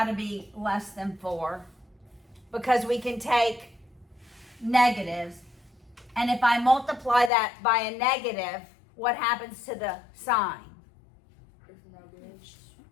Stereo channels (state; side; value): drops out; right; at 7.3 s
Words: to be less than 4, because we can take negatives, and if I multiply that by a negative, what happens to the sign?